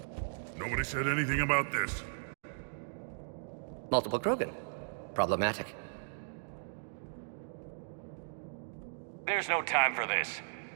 Nobody said anything about this. Multiple Krogan. Problematic. There's no time for this.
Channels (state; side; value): silent; left; digital silence